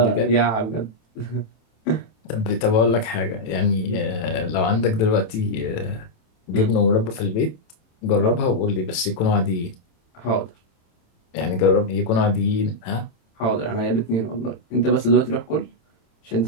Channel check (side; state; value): right; late; 27 ms